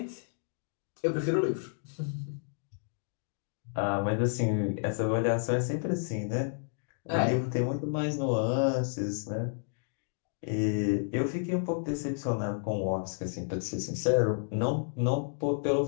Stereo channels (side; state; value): right; silent; digital silence